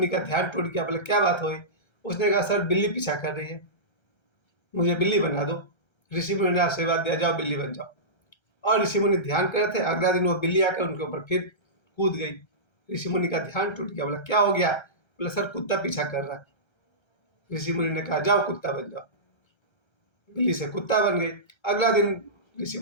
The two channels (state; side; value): late; right; 1.3 ms